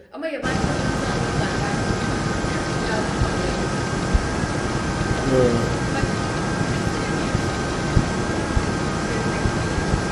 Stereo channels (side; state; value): both; identical; correlation 1.00